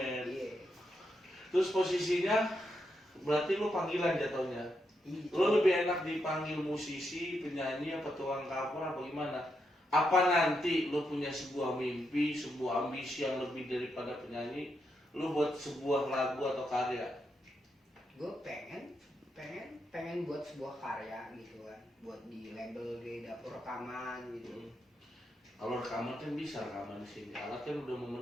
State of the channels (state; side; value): normal; both; correlation 0.83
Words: Iya. Terus posisinya berarti lu panggilan jatuhnya. Iya. Lu lebih enak dipanggil musisi, penyanyi, apa tukang cover apa gimana? Apa nanti lu punya sebuah mimpi, sebuah ambisi yang lebih daripada penyanyi, lu buat sebuah lagu atau karya? Gue pengen buat sebuah karya gitu kan, buat di label di dapur rekaman gitu. Kalau rekaman kan bisa rekaman di sini, alat kan udah